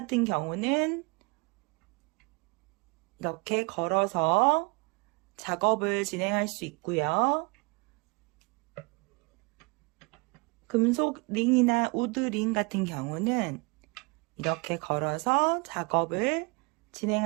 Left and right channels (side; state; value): left; quieter; 29.6 dB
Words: 경우는 이렇게 걸어서 작업을 진행할 수 있고요. 금속 링이나 우드 링 같은 경우는 이렇게 걸어서 작업을